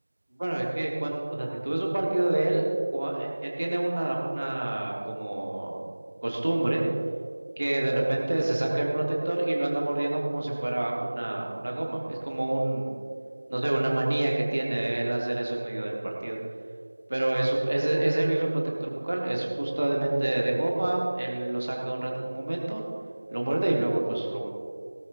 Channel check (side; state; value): both; inverted; correlation -1.00